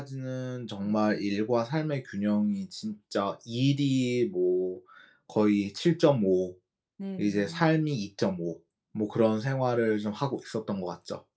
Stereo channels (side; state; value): both; identical; correlation 1.00